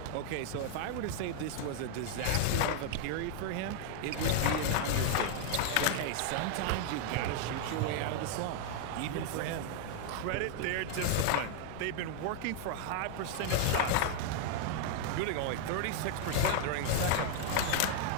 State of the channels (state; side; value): different; both; correlation 0.00